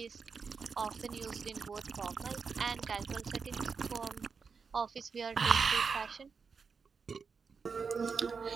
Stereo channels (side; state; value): left; quieter; 5.4 dB